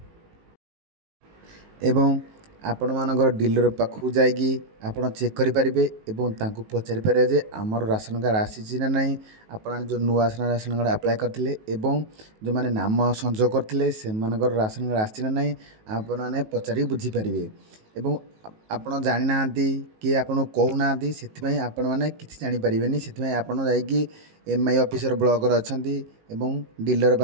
आपण मानकर डीलर पाखु जाइकी आपण चेक करि परिबे एवं तांको पचारि पारे जे हमर राशन कार्ड आसी ना नहीं आपण जो नुआ राशन कार्ड अप्लाई करथिले एवं जो माने नाम संयोग करथिले से मानकर राशन कार्ड आसी ना नहीं आपण माने पचारि बुझी परिबे एवं आपण जानि नांती कि आपण कहू नांती सेति आपण माने किछि जानि परिबेनी सेति आपण जाइकी एमआई ऑफिसर ब्लॉक रे अछंती एवं डीलर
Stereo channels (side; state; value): left; late; 19 ms